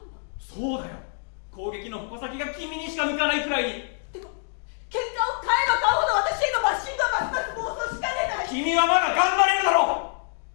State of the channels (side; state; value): right; silent; 61 dB below the other